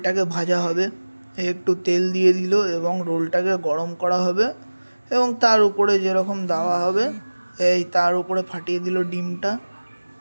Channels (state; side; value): inverted; both; correlation -1.00